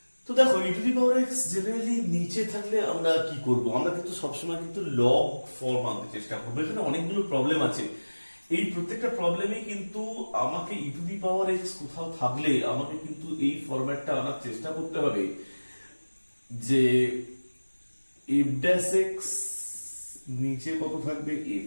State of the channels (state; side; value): inverted; both; correlation -1.00